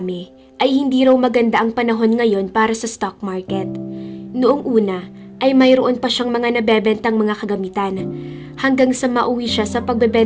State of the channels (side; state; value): both; identical; correlation 1.00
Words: ay hindi raw maganda ang panahon ngayon para sa stock market. Noong una ay mayroon pa siyang mga nabebentang mga kagamitan, hanggang sa mauwi siya sa